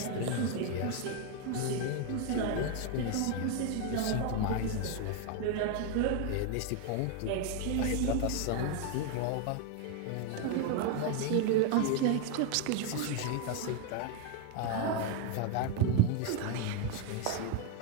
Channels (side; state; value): both; different; correlation 0.01